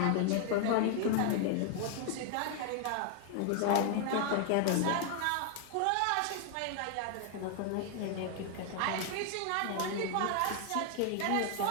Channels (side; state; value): both; different; correlation 0.00